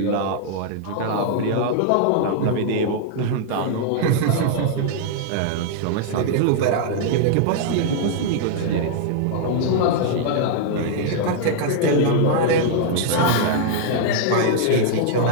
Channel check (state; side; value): different; both; correlation -0.01